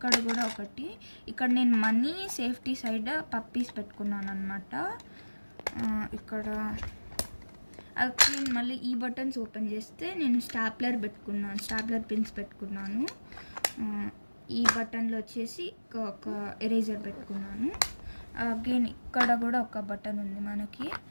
కూడా ఒకటి, ఇక్కడ నేను మనీ సేఫ్టీ సైడ్ పప్పీస్ పెట్టుకున్నాను అనమాట. ఇక్కడ అది మళ్ళీ ఈ బటన్స్ ఓపెన్ చేస్తే నేను స్టాప్లర్ పెట్టుకున్నాను, స్టాప్లర్ పిన్స్ పెట్టుకున్నాను. ఈ బటన్లో వచ్చేసి ఒక ఎరేజర్ పెట్టుకున్నాను. అగైన్ ఇక్కడ కూడా ఒక బటన్ ఉంది మనకి,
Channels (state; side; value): inverted; both; correlation -1.00